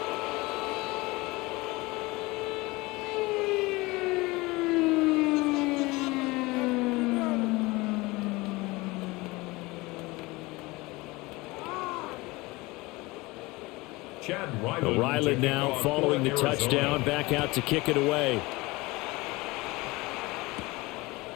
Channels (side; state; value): right; quieter; 22.4 dB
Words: Riley now following the touchdown, back out to kick it away.